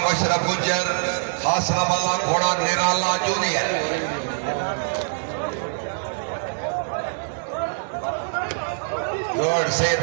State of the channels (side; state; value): left; silent; 63 dB below the other